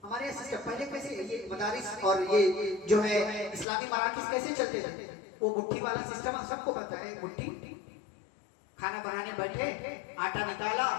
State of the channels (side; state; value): right; drops out; at 3.7 s